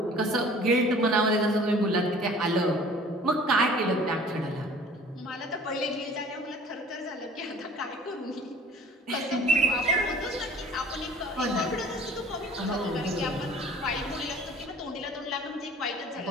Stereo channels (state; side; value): normal; both; correlation 0.48